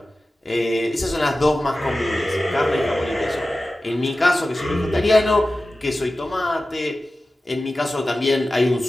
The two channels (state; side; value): normal; both; correlation 0.95